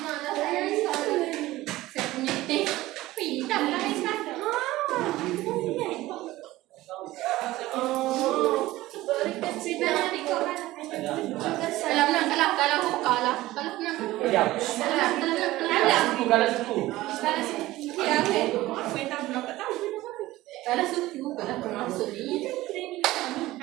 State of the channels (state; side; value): quieter; left; 17.2 dB